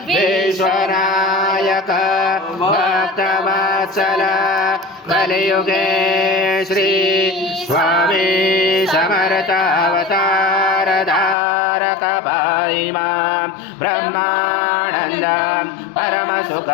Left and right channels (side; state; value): right; drops out; at 11.4 s